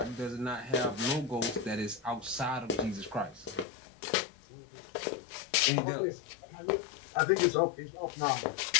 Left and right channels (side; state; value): right; drops out; at 3.7 s